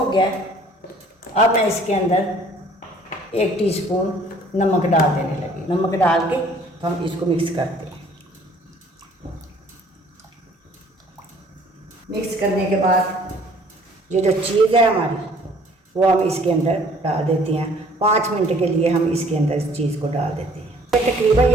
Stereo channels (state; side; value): normal; both; correlation 0.56